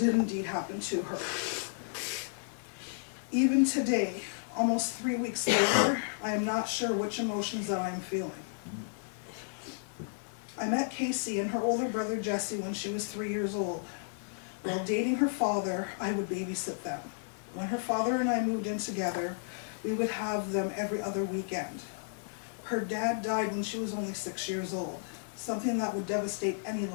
indeed happen to her. Even today, almost 3 weeks later, I am not sure which emotions that I am feeling. I met Cassey and her older brother Jesse when she was 3 years old. While dating her father, I would babysit them. When her father and I moved in together, we would have them every other weekend. Her dad died when she was only 6 years old, something that would devastate any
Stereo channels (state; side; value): silent; right; 56 dB below the other